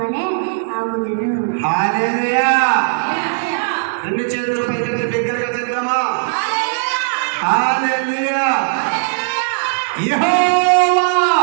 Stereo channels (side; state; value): left; silent; digital silence